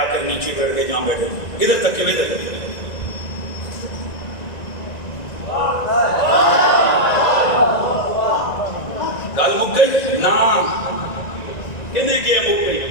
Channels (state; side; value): late; right; 1.9 ms